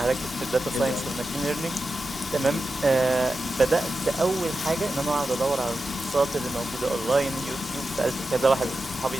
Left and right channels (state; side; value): normal; both; correlation 0.91